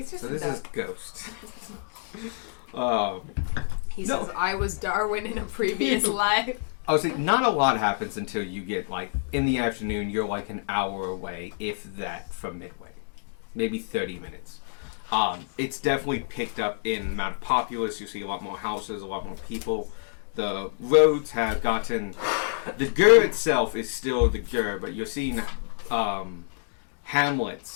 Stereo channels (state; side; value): silent; right; digital silence